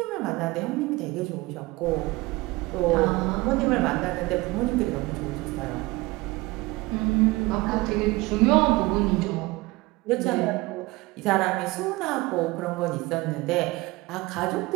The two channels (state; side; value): quieter; left; 21.8 dB